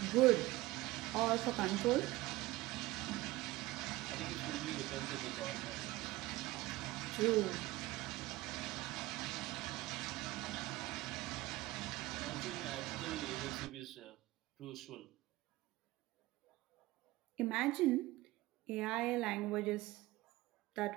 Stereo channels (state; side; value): quieter; left; 18.7 dB